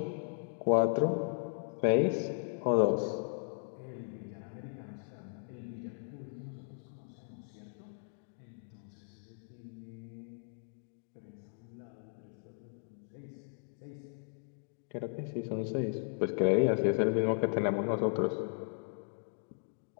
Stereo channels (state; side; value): silent; right; digital silence